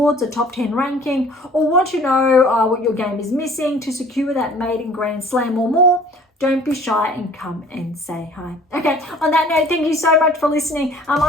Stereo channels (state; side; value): normal; both; correlation 0.51